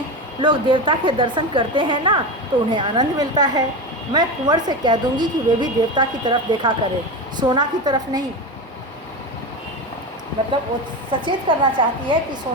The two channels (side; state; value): both; normal; correlation 0.21